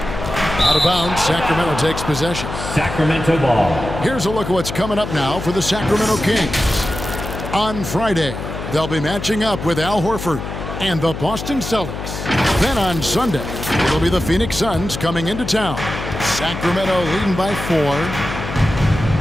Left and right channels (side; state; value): left; noise; hum, 7 dB below the sound